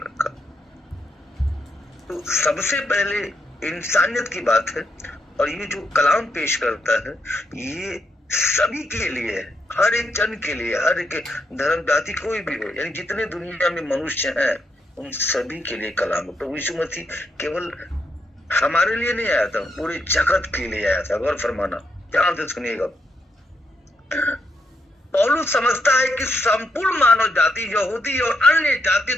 तो सबसे पहले इंसानियत की बात है, और ये जो कलाम पेश करता है ये सभी के लिए है, हर एक जन के लिए, हर एक धर्म जाति कोई भी हो, यानी जितने दुनिया में मनुष्य हैं उन सभी के लिए कलाम है। प्रभु यीशु मसीह केवल हमारे लिए नहीं आया था, पूरे जगत के लिए आया था। गौर फरमाना, ध्यान से सुनिएगा। पौलुस समझता है कि संपूर्ण मानव जाति, यहूदी और अन्य जाति,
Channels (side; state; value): both; normal; correlation 0.79